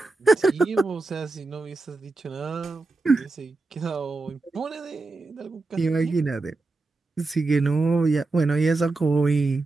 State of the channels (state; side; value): quieter; left; 3.5 dB